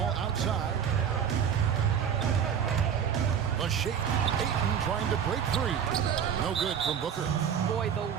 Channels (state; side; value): quieter; left; 8.1 dB